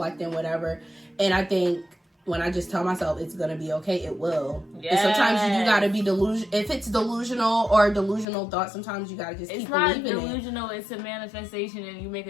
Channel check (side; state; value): right; drops out; at 8.2 s